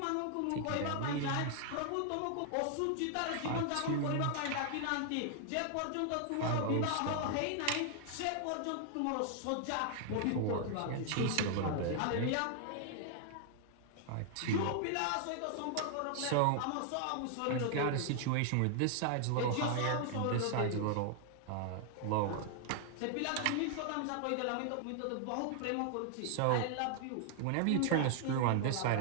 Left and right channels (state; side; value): different; both; correlation 0.00